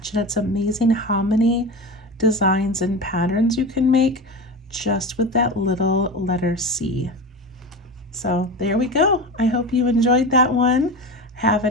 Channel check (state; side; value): normal; both; correlation 0.25